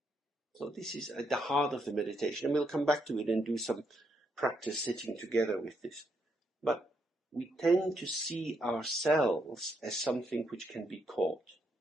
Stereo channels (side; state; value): both; normal; correlation 0.77